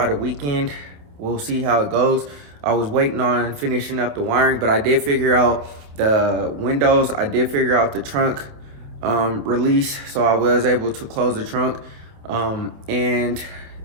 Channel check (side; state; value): left; late; 28 ms